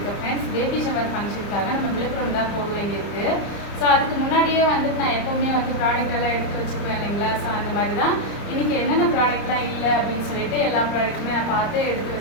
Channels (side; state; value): right; late; 30 ms